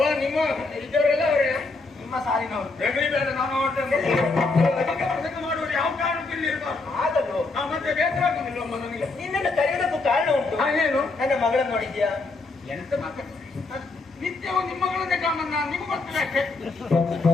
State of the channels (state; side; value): quieter; right; 3.6 dB